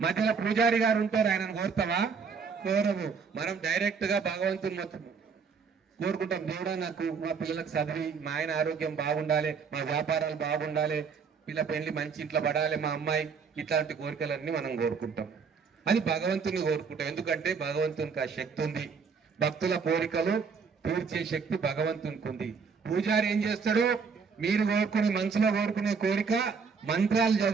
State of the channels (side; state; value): left; quieter; 5.6 dB